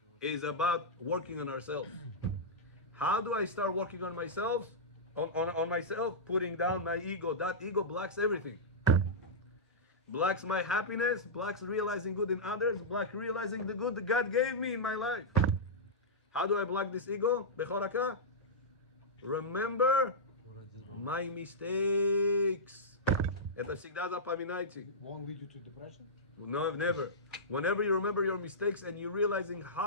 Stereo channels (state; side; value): normal; both; correlation -0.12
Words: it's about working on ourselves. How do I start working on myself? On myself, putting down my ego. That ego blocks everything. Blocks my happiness, blocks realizing good in others, blocks realizing the good that God gave me in my life. How do I block this ego? Bechoraka? Remember my mistakes. Это всегда запоминайте. Won't lead you to depression? No, never. Whenever you remember your mistakes and you're realizing